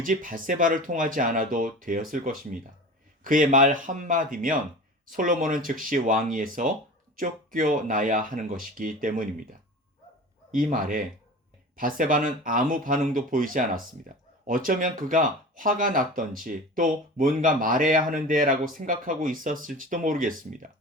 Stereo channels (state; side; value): normal; both; correlation 0.35